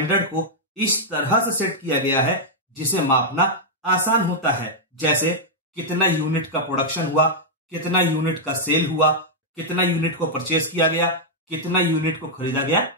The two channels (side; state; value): both; normal; correlation -0.05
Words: को इस तरह से सेट किया गया है जिसे मापना आसान होता है, जैसे कितना यूनिट का प्रोडक्शन हुआ, कितना यूनिट का सेल हुआ, कितना यूनिट को परचेज किया गया, कितना यूनिट को खरीदा गया